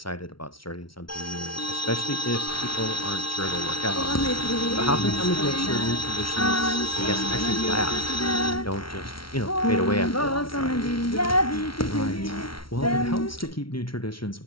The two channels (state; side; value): late; right; 0.74 ms